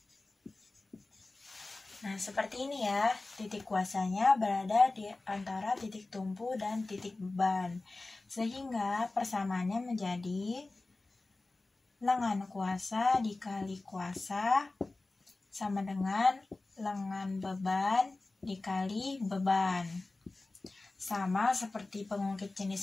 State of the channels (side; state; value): right; quieter; 3.2 dB